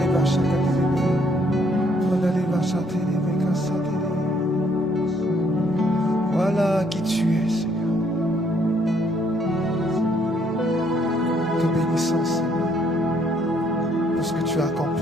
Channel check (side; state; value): both; normal; correlation 0.68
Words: Voilà qui tu es, Seigneur. Te bénissons, Seigneur, pour ce que tu as